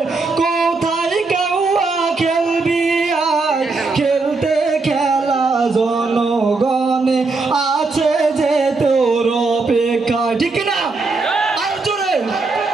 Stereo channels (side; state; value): left; quieter; 3.9 dB